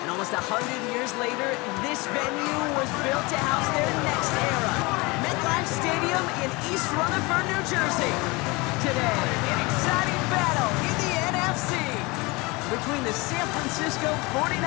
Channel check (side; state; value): right; quieter; 25.0 dB